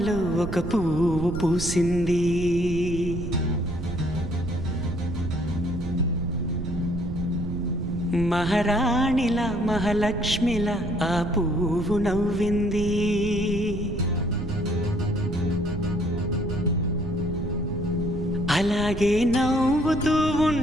ఒక పువ్వు పూసింది. మహారాణిలా మహాలక్ష్మిలా ఆ పువ్వు నవ్వింది. అలాగే నవ్వుతూ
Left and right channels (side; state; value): right; noise; rumble, 6 dB below the sound